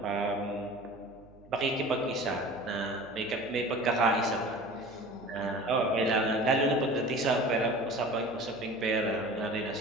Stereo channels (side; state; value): right; noise; hum, 25 dB below the sound